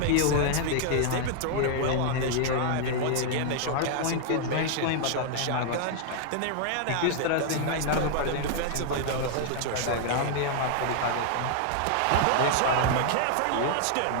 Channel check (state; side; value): different; both; correlation -0.01